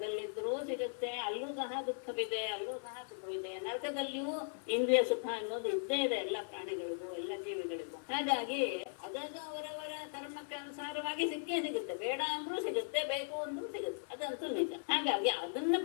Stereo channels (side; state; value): right; silent; digital silence